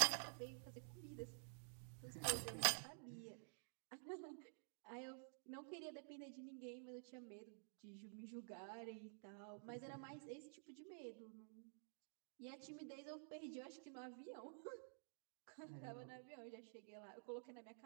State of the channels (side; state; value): left; silent; digital silence